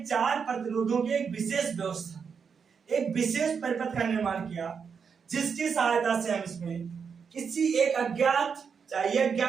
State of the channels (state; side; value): quieter; left; 6.2 dB